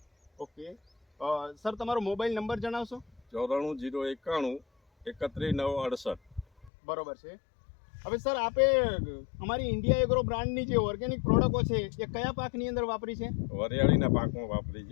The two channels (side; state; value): right; drops out; at 6.7 s